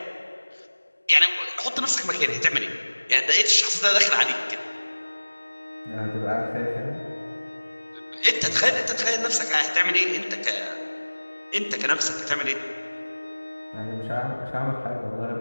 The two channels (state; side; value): inverted; both; correlation -1.00